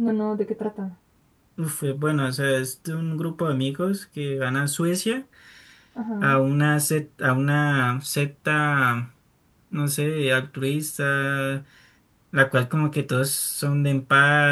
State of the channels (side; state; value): both; identical; correlation 1.00